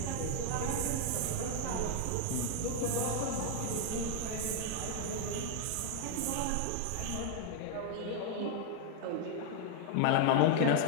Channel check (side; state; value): both; different; correlation 0.00